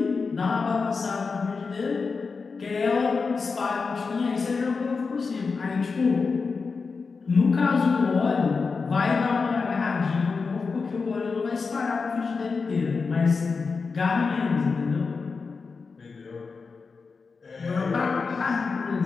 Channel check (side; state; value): right; quieter; 4.7 dB